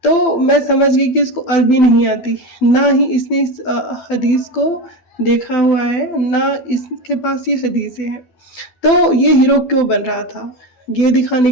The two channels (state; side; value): late; right; 12 ms